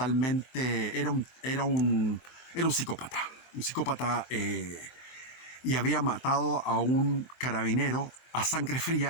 Era un psicópata. Un psicópata y había matado a un carabinero a sangre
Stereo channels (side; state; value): right; late; 23 ms